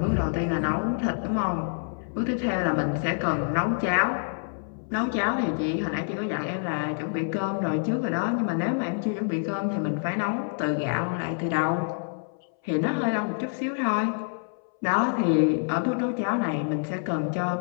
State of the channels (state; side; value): silent; right; 60 dB below the other